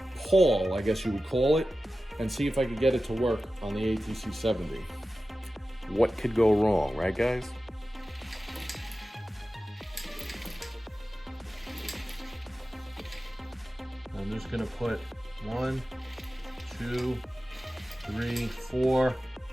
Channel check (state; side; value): normal; both; correlation 0.94